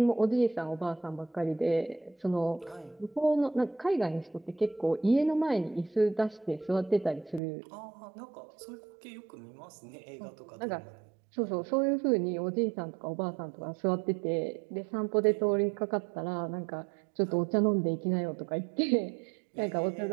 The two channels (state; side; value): drops out; left; at 7.4 s